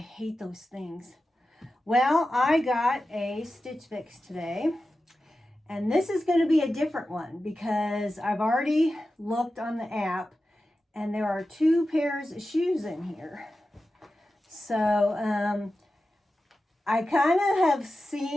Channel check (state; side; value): normal; both; correlation 0.93